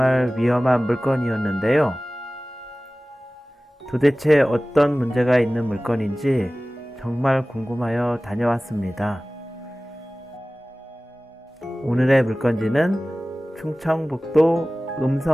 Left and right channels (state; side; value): normal; both; correlation 0.97